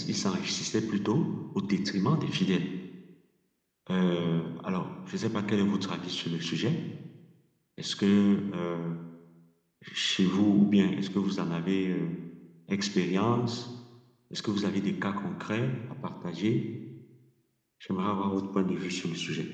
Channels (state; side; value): identical; both; correlation 1.00